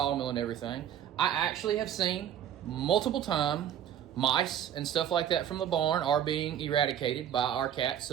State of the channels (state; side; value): quieter; left; 9.9 dB